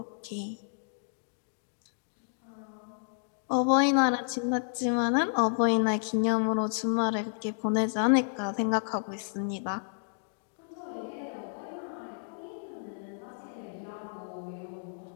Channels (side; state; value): right; silent; digital silence